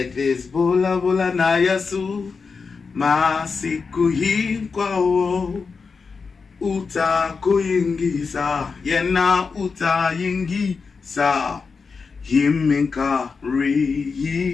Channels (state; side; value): quieter; right; 5.0 dB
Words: this. Bula Bula na Yesu, masiku hinkwawo, uta kuyingisa, yena uta yingisa. Himinka